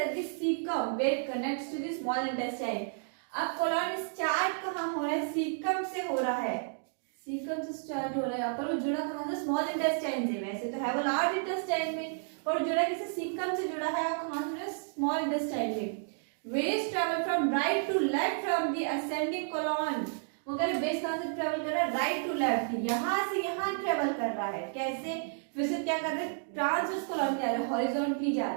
the cecum where it connects to the small intestine। अब colon स्टार्ट कहाँ हो रहा है, सीकम से हो रहा है, सीकम से स्टार्ट हो रहा है। यहाँ पर वो जुड़ा कहाँ से, स्मॉल इंटेस्टाइन से। वैसे तो है वो लार्ज इंटेस्टाइन में, पर जुड़ा किसी सीकम से जुड़ा है, और कहाँ से, स्मॉल इंटेस्टाइन में। Waste travel from right to left from the ascending colon. वो कह रहे वेस्ट कहाँ से ट्रेवल कर रहा है, राइट टू लेफ्ट, यहाँ से यहाँ ट्रेवल कर रहा है। कैसे, फिर से क्या कर रहे हैं, ट्रांसवर्स कोलॉन जा रहा है, हॉरिजॉन्टली जा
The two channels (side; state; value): left; silent; digital silence